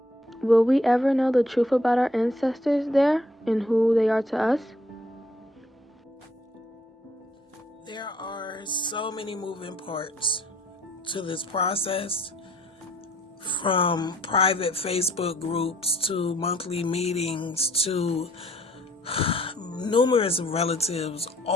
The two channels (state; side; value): normal; both; correlation 0.63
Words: Will we ever know the truth about our ancestors there and who they are to us? There are so many moving parts to this process, from private Facebook groups to monthly meetings to numerous relatives